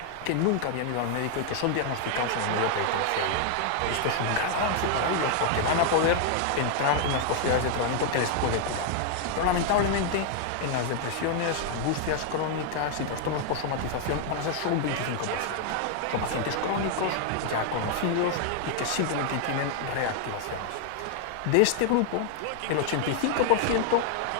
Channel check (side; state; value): both; different; correlation 0.00